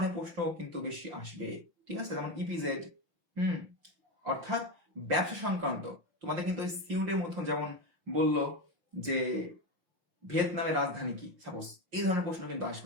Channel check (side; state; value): left; late; 5.7 ms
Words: প্রশ্ন কিন্তু বেশি আসবে। ঠিক আছে, যেমন ইপিজেড, অর্থাৎ ব্যবসা সংক্রান্ত। তোমাদের কিন্তু সিউটের মতো যেমন বললো যে ভিয়েতনামের রাজধানী কি, সাপোজ এই ধরনের প্রশ্ন কিন্তু